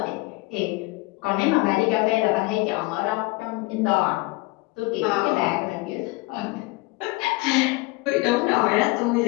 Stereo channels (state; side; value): quieter; right; 23.6 dB